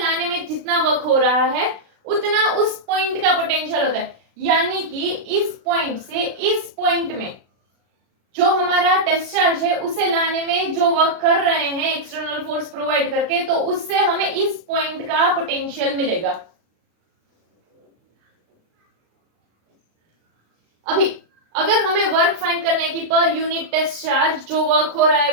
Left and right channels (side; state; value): left; late; 36 ms